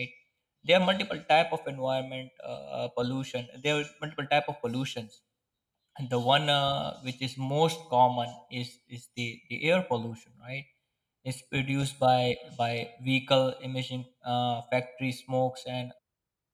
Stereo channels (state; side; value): identical; both; correlation 1.00